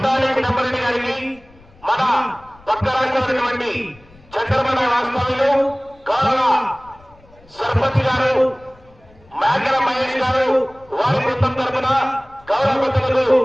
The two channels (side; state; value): left; noise; rumble, 27 dB below the sound